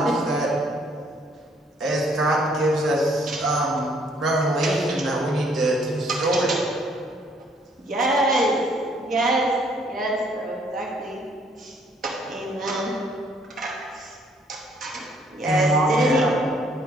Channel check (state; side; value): normal; both; correlation 0.65